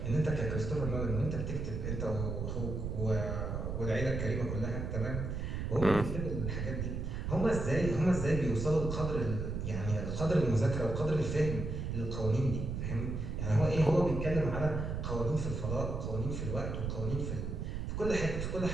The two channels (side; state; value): right; noise; rumble, 3 dB below the sound